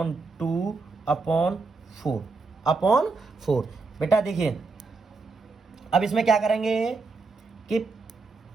2 अपॉन 4 बेटा देखिए अब इसमें क्या करेंगे कि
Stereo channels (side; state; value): left; quieter; 4.0 dB